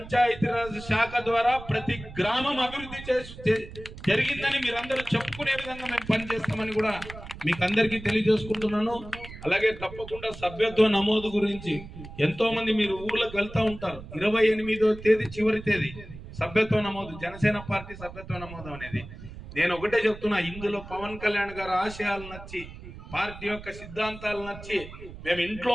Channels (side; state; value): right; noise; rumble, 14 dB below the sound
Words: శాఖ ద్వారా ప్రతి గ్రామం అభివృద్ధి జరిగిందని మీరందరూ చెప్పుకునే విధంగా మేము పనిచేస్తామని కూడా మీకు అందరికీ తెలియజేసుకుంటున్నాను. అలాగే తప్పకుండా సభ్యత్వ నమోదు గురించి ఎంతో మంది మీరు ఊర్లకు వెళ్తా ఉంటారు. 28వ తేదీ చివరి తేదీ సభ్యత్వ నమోదు, జనసేన పార్టీ సభ్యత్వ నమోదు అనేది. నేను ఒకటే చెప్తున్నా, ఇందులో పవన్ కళ్యాణ్ గారి ఆశయాలు నచ్చి, పార్టీ యొక్క సిద్ధాంతాలు నచ్చి మేము ఇంట్లో